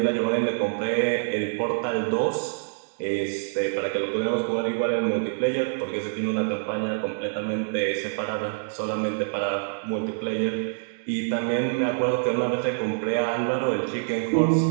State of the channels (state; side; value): silent; left; digital silence